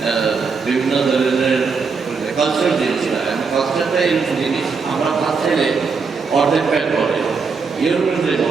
বিভিন্ন ধরনের কালচার জিনিসটা। কালচারটা এরকম জিনিস আমরা ভাবছিলে অর্ধেক প্যাট করে, ইউরোপিয়ানদের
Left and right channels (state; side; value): quieter; left; 5.1 dB